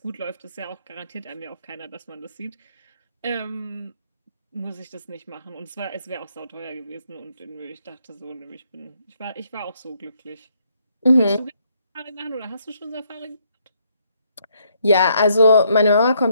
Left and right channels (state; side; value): inverted; both; correlation -0.71